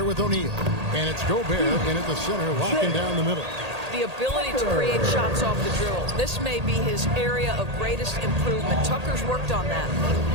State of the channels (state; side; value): late; left; 1.8 ms